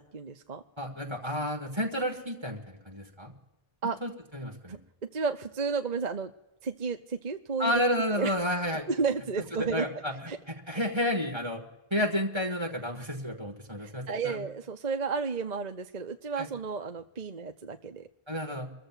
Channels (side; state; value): left; late; 1.3 ms